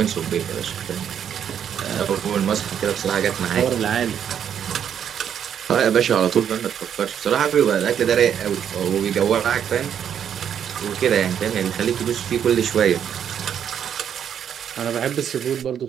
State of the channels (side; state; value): left; quieter; 8.8 dB